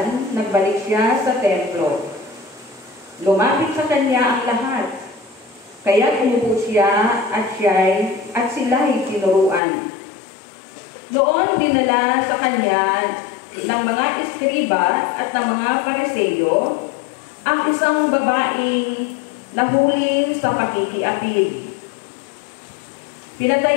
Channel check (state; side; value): drops out; right; at 9.6 s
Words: nagbalik siya sa templo. Lumapit sa kanya ang lahat. Kaya umupo siya at sila'y tinuruan. Noon dinala sa kanya ng mga eskriba at ng mga Pariseo ang isang babaeng nahuli sa pakikiapid.